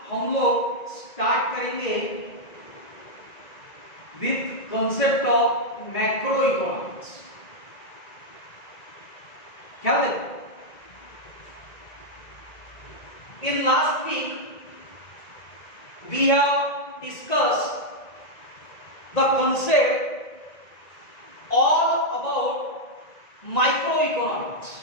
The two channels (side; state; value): right; late; 1.9 ms